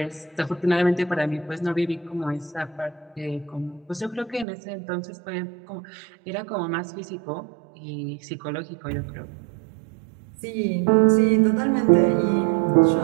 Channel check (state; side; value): drops out; left; at 4.5 s